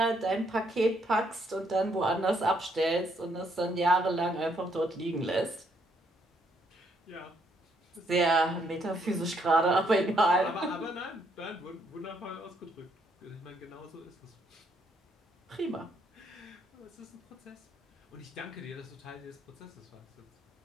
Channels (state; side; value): normal; both; correlation 0.71